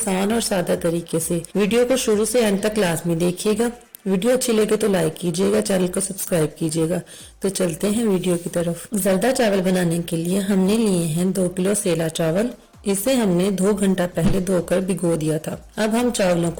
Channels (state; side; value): identical; both; correlation 1.00